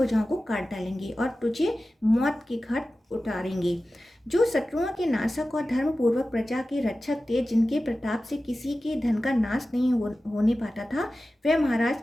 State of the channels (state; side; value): normal; both; correlation 0.95